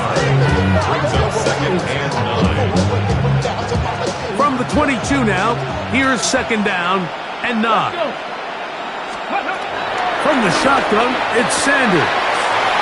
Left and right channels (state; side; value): identical; both; correlation 1.00